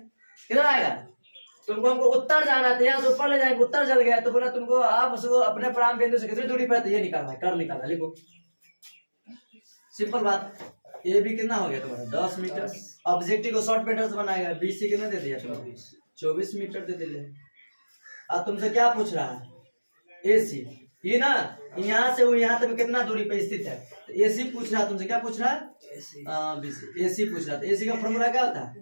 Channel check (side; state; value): both; inverted; correlation -1.00